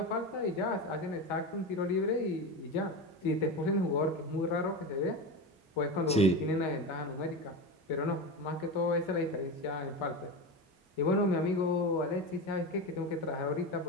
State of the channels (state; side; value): normal; both; correlation 0.22